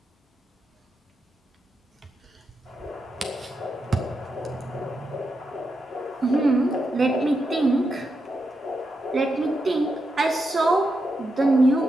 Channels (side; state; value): both; normal; correlation 0.85